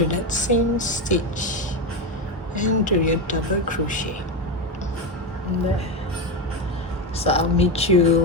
that same stitch and do your double crochet. There. So I'll meet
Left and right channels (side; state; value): both; normal; correlation 0.13